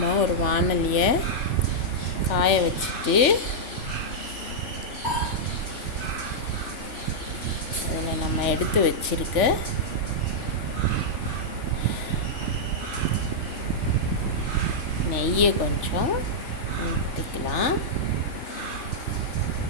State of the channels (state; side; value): late; right; 3.4 ms